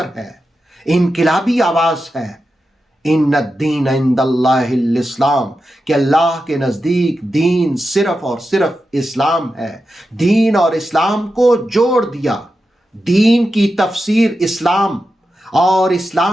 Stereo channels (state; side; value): normal; both; correlation 0.90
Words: ہے، انقلابی آواز ہے۔ ان الدین عند اللہ الاسلام، کہ اللہ کے نزدیک دین صرف اور صرف اسلام ہے۔ دین اور اسلام کو جوڑ دیا، دین کی تفسیر اسلام اور